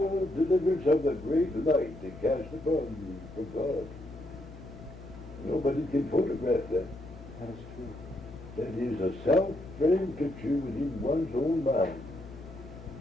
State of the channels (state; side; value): noise; left; hum, 15 dB below the sound